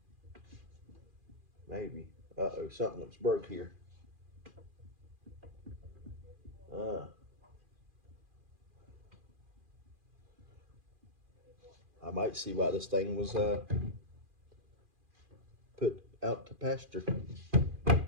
Maybe. Uh-oh, something looks broke here. I might see why this thing was put out to pasture.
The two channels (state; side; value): late; left; 2.4 ms